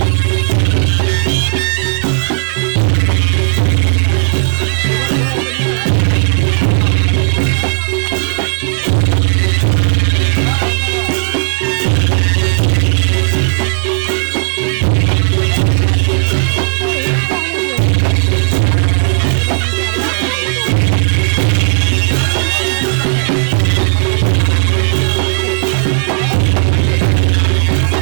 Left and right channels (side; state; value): left; silent; digital silence